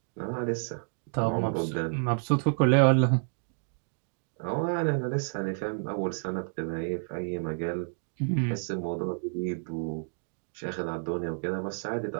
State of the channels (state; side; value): silent; left; 58 dB below the other